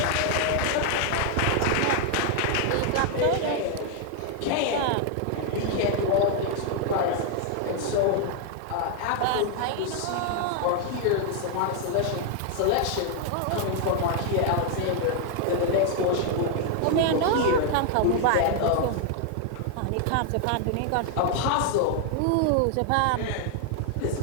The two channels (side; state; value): both; different; correlation 0.00